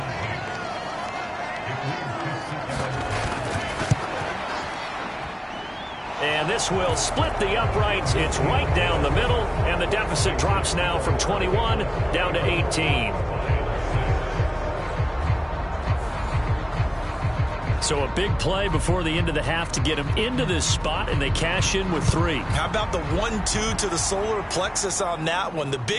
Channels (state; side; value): identical; both; correlation 1.00